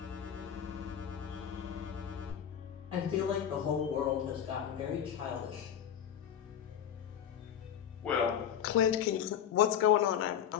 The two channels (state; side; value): quieter; right; 9.3 dB